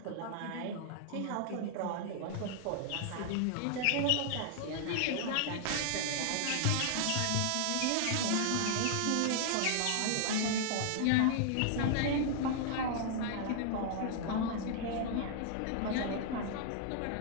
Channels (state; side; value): different; both; correlation -0.01